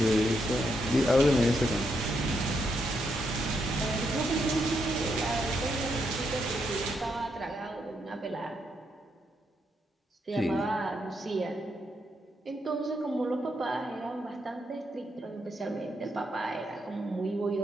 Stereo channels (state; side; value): normal; both; correlation 0.79